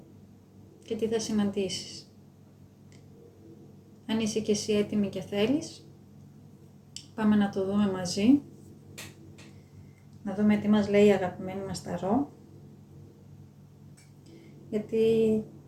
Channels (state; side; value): identical; both; correlation 1.00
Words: και τι θα συναντήσεις. Αν είσαι και εσύ έτοιμη και θέλεις, πάμε να το δούμε μαζί. Να δούμε τι μας λέει η αγαπημένη μας ταρό. Γιατί